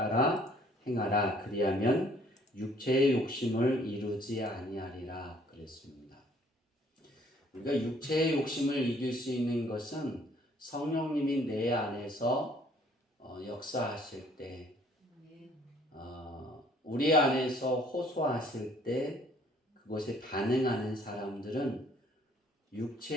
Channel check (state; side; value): normal; both; correlation 0.60